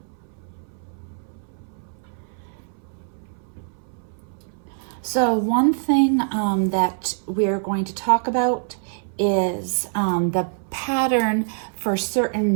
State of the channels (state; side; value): silent; left; 60 dB below the other